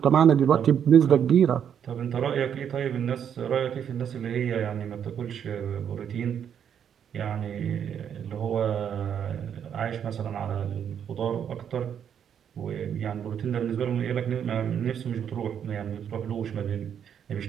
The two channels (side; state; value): left; quieter; 8.6 dB